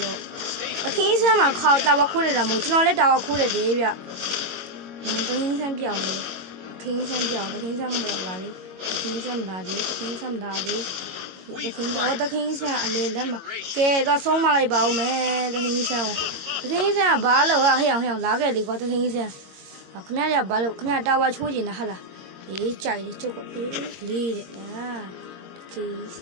တခင်ဆန်းမှာခေါတာဝခိုးနေတာမဟုတ်ကျွန်တော်လည်းတာဝခိုးတယ်လေဗျတခင်ဆန်းပြောင်းလေတခင်ဆန်းမလာပါလေတခင်ဆန်းမလာသေးတခင်ဆန်းတခင်ဆန်းအလေလက်မှာကဲတော့ဆုံးမလိုက်ပါဦးမယ်တခင်ဆန်းကဘာလို့ဟဲ့အောင်လာခဲ့လေကွာတခင်ဆန်းခင်ဗျားကဘာလို့ခင်ဗျားတာဝချိုးနေတာဟာလားအေးကြိုက်လေကျုပ်ကလေးတဲ့တခင်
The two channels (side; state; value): left; late; 22 ms